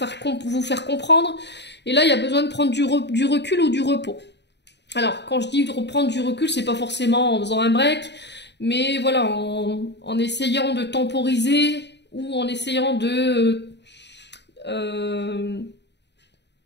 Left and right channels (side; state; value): right; late; 0.50 ms